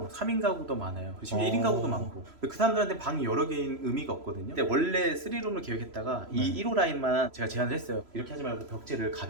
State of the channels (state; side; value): late; left; 3.0 ms